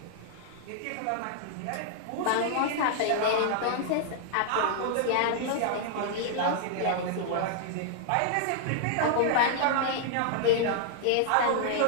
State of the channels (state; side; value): different; both; correlation -0.01